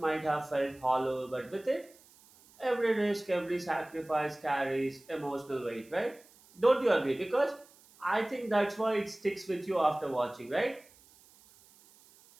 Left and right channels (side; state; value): right; noise; hiss, 27 dB below the sound